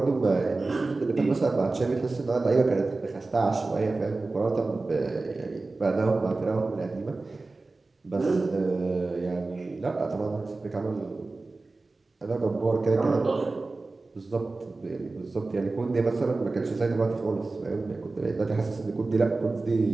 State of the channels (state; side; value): quieter; left; 3.5 dB